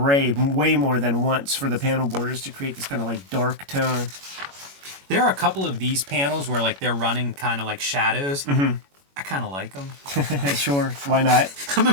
way more than once for the panel borders to create this kind of like dark tone. There are a couple of these panels where like they're running kind of like shadows. Mm-hmm. I kind of like them. Sure, why not? I'm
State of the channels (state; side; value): late; left; 21 ms